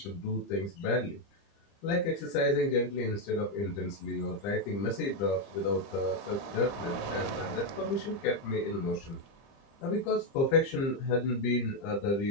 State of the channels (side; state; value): right; late; 30 ms